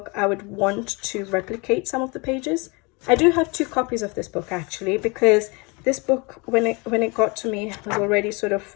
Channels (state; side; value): quieter; right; 28.5 dB